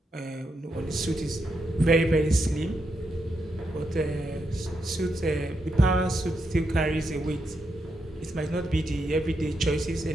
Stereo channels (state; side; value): normal; both; correlation 0.83